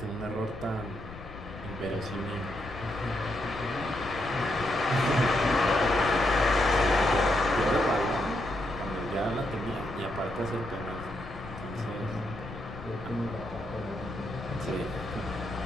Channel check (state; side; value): noise; left; rumble, 14 dB below the sound